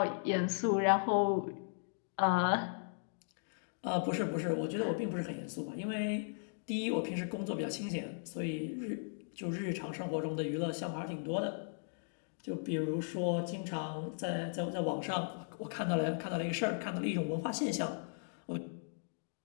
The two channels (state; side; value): silent; right; digital silence